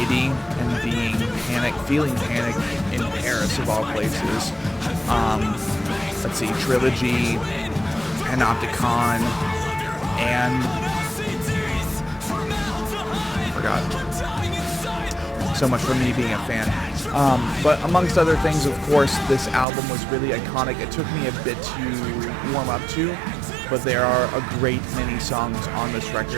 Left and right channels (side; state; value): left; drops out; at 19.7 s